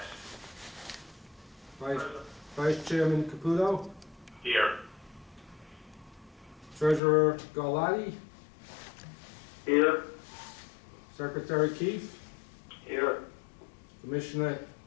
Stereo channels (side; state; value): right; drops out; at 7.0 s